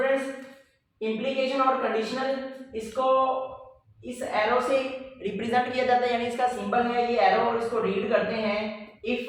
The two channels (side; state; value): both; identical; correlation 1.00